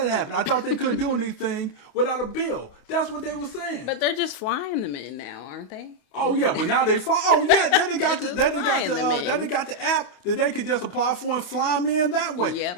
that happen? I thought they couldn't do anything without a bill. That's what they were saying. But they're just flying them in now, aren't they? Oh yeah, but now they fly. Oh yeah, then they got the app that they could just apply for and fly them in that way. Yep.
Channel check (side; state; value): right; late; 28 ms